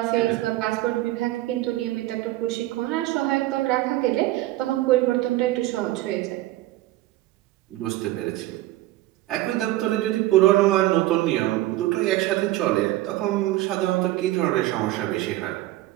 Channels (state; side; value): quieter; left; 16.5 dB